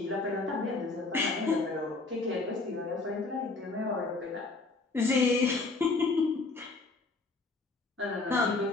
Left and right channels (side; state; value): right; quieter; 3.6 dB